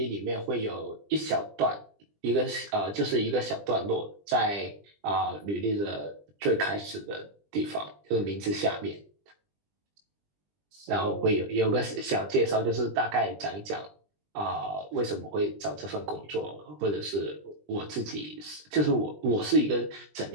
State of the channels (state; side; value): late; left; 20 ms